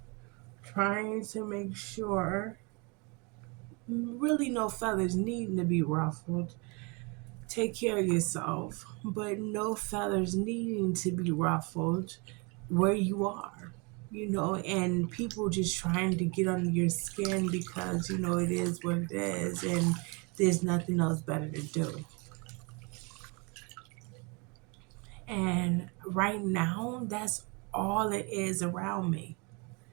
trying to make sure really no feathers needing to be ruffled. Take care of yourself, but no feathers needing to be ruffled where you are, and people just trying to get under your skin because, it is what it is and there's nothing else better to do. And right now, that's all it is around me.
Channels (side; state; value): left; quieter; 30.1 dB